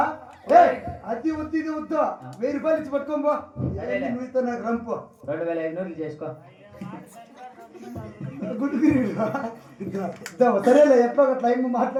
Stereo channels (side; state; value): both; identical; correlation 1.00